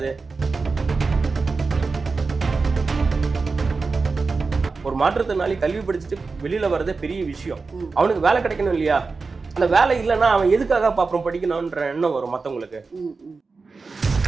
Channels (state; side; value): quieter; left; 4.3 dB